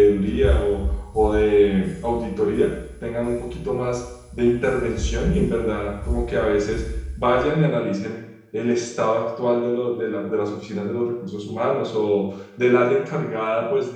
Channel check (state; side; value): identical; both; correlation 1.00